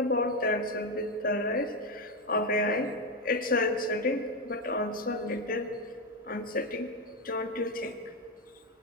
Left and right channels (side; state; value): both; normal; correlation 0.08